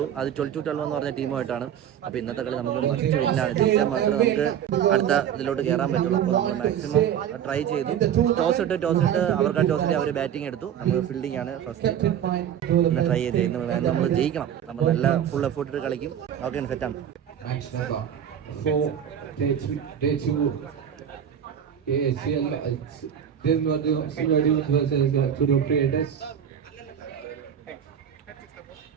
അത് 12-12 എന്ന് പറഞ്ഞ ടീമുമായിട്ടാണ്. അപ്പോൾ ഇന്നത്തെ കളി നമുക്ക് മസ്റ്റ് വിന്നാണ്. ജയിച്ചാൽ മാത്രമേ നമുക്ക് അടുത്ത ഇതിലോട്ട് കയറാൻ പറ്റുള്ളൂ. അപ്പോൾ നമ്മൾ മാക്സിമം ട്രൈ ചെയ്തു. ടോസ് ഇട്ട് അവർക്ക് ടോസ് ഇട്ട് അവർ ബാറ്റിംഗ് എടുത്തു. നമുക്ക് ഫീൽഡിംഗ് ആണ് ഫസ്റ്റ് ഒന്ന് ട്രൈ ചെയ്ത് നമ്മൾ ജയിക്കണം. നമ്മൾ നല്ല ഫുൾ എഫേർട്ട് ഇട്ട് കളിക്കും. ഓക്കെ, സെറ്റാണ്. ACL then what the Silver versus Tudor Creators.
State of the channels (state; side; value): quieter; left; 9.2 dB